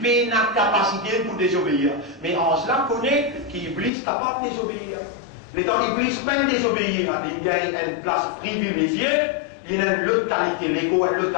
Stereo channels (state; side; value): drops out; right; at 3.9 s